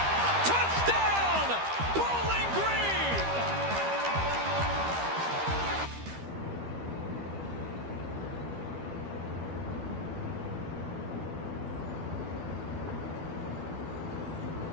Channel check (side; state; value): left; late; 13 ms